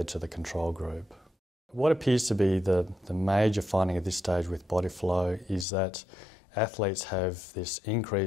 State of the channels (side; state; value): right; drops out; at 5.7 s